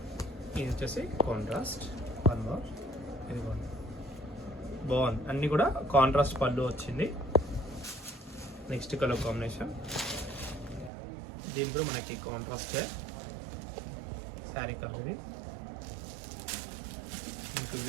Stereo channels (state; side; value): drops out; left; at 10.9 s